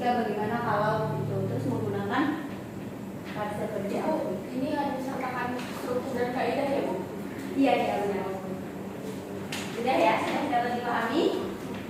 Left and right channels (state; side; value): identical; both; correlation 1.00